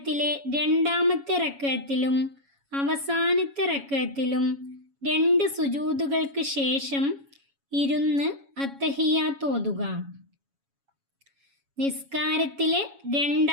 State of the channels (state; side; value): late; left; 7.2 ms